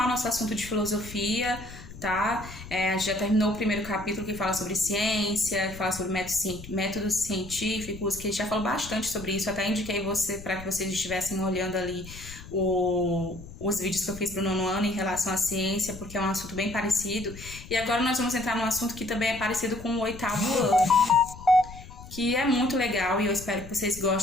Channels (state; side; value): noise; left; rumble, 15 dB below the sound